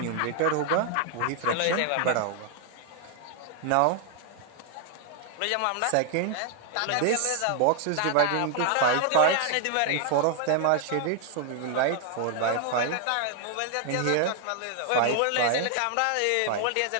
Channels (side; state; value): both; different; correlation 0.00